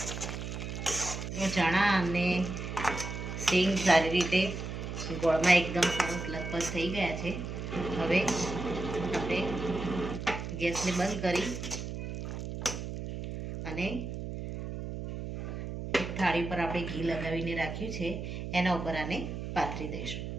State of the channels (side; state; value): right; noise; hum, 6 dB below the sound